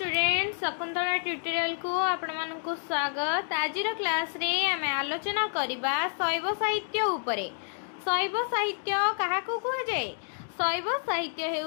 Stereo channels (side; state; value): right; silent; digital silence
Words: Shakuntala tutorial को आपण मानकु स्वागत। आज क्लास रे आमे आलोचना करिबा शैव साहित्य उपरे। शैव साहित्य काहाकु कुहा जाय? शैव साहित्य